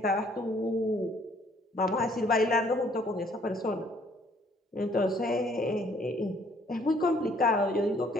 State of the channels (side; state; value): both; normal; correlation 0.62